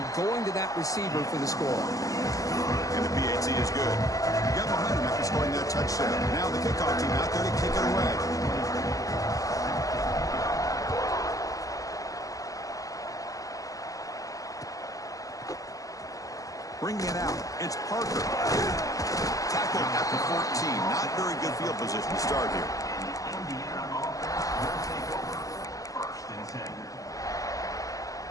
going to that receiver for the score. And the PAT is good. Got behind him after scoring that touchdown. Now the kickoff team out there to kick it away. Bringing it out, it's Parker. Tackled at the 14. Not very good field position to start here.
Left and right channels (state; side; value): late; right; 0.17 ms